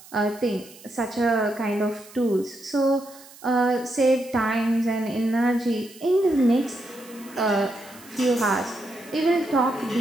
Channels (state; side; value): noise; right; hiss, 21 dB below the sound